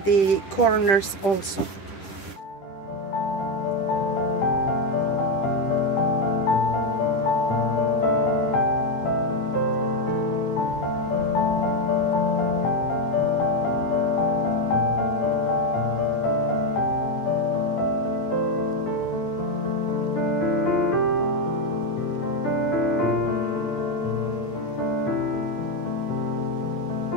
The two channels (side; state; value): right; late; 10 ms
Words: the corners also.